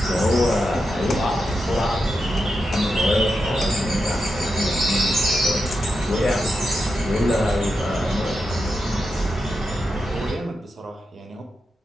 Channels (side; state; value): both; normal; correlation 0.87